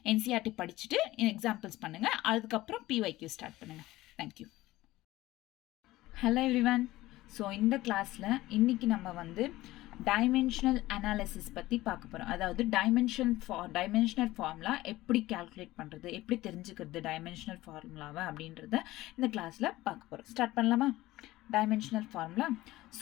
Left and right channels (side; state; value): right; quieter; 17.3 dB